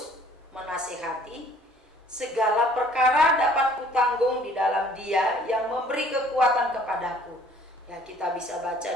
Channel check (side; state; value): both; normal; correlation 0.56